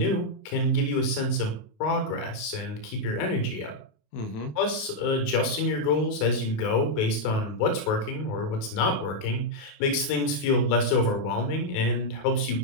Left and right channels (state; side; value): late; right; 28 ms